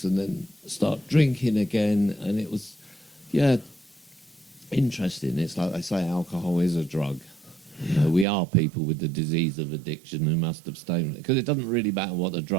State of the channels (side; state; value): left; drops out; at 8.2 s